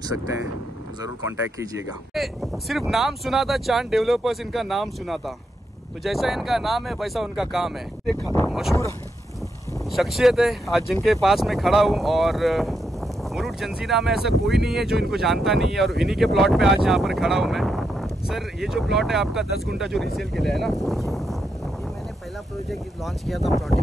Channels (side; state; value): both; normal; correlation 0.82